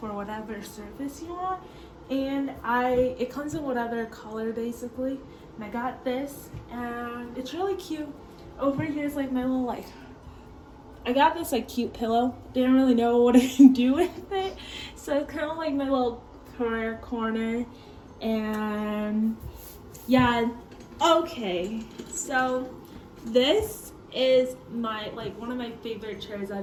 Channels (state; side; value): identical; both; correlation 1.00